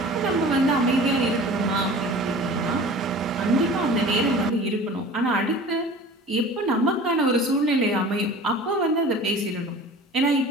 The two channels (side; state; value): both; normal; correlation 0.41